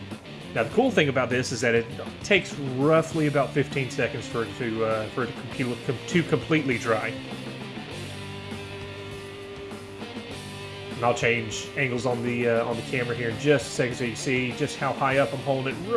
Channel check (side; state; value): both; identical; correlation 1.00